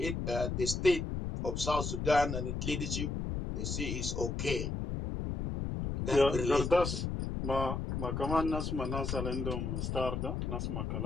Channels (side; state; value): left; noise; rumble, 2 dB below the sound